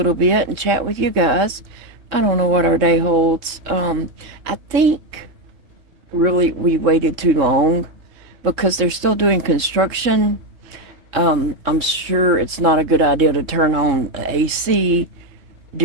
bit and chat with you guys. I don't know what our day holds. I think really we waited too long because they're still doing construction. I'm sure it's not a good idea to turn on AC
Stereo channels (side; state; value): left; late; 3.7 ms